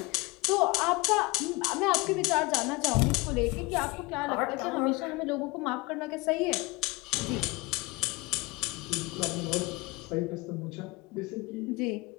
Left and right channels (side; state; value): right; quieter; 23.3 dB